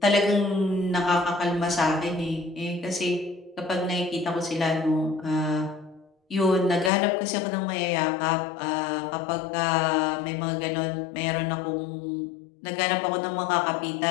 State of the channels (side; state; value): right; drops out; at 6.9 s